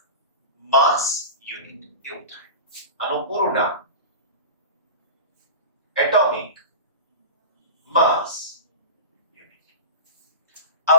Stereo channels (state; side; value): inverted; both; correlation -0.30